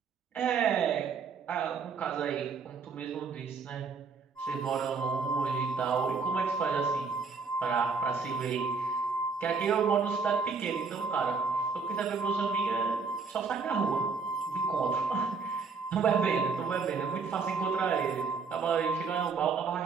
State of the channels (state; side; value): quieter; left; 4.9 dB